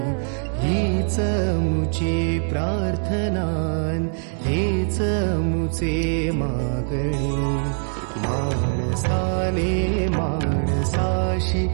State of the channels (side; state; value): left; silent; 64 dB below the other